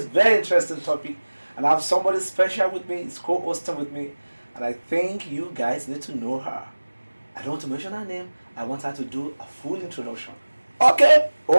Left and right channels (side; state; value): both; inverted; correlation -1.00